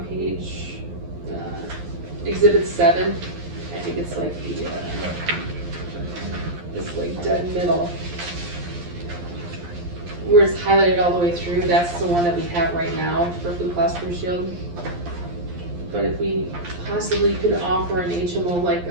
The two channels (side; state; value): left; late; 11 ms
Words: page, exhibit 7, I think it's like the, it's like dead middle. Where it's highlighted all the way through, that's the one that we have right now for Blue Cross Blue Shield. But if we possibly could offer an HMO like